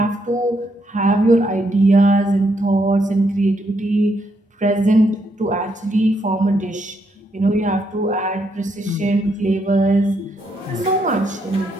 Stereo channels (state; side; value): normal; both; correlation 0.76